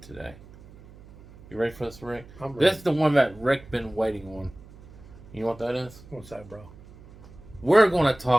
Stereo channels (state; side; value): noise; right; hum, 21 dB below the sound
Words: today. You ready for this, Rick? I'm ready. This is the one that Rick been waiting on. You know what that is? What's that, bro? We're going to